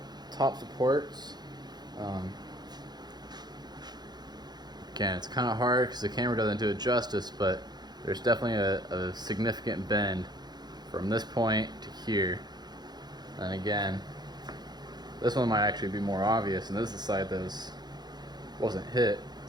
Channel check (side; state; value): left; late; 0.20 ms